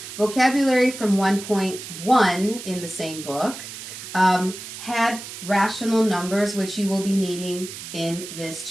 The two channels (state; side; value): noise; right; hiss, 11 dB below the sound